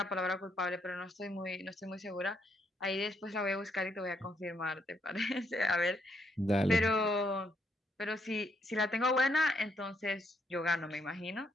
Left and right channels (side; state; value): both; normal; correlation 0.74